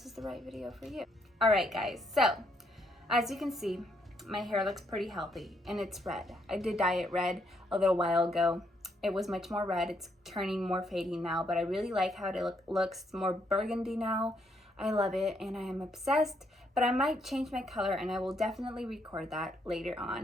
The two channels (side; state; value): both; normal; correlation 0.74